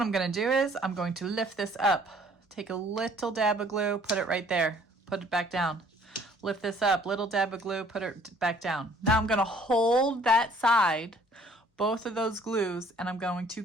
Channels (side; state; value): both; normal; correlation 0.57